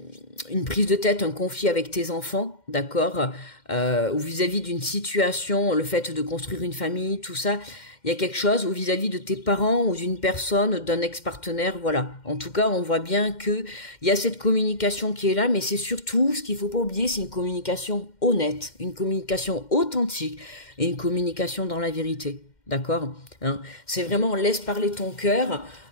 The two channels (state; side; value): late; right; 2.1 ms